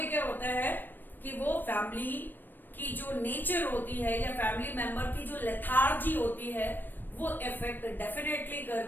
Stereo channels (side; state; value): right; late; 0.092 ms